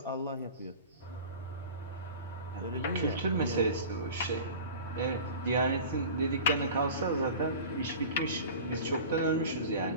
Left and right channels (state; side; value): inverted; both; correlation -0.37